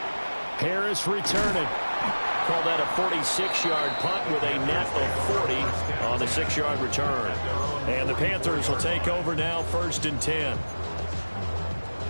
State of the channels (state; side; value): inverted; both; correlation -1.00